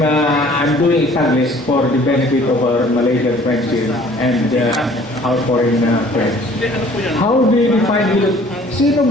doing Taglish for the benefit of our Malaysian friends here and our foreign friends. How do you define hilot? Sino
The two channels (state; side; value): normal; both; correlation 0.53